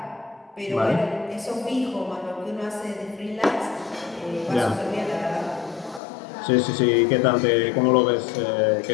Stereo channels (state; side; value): drops out; right; at 6.0 s